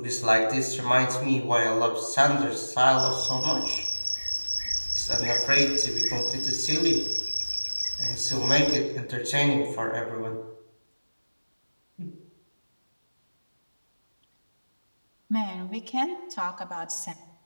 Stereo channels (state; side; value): inverted; both; correlation -1.00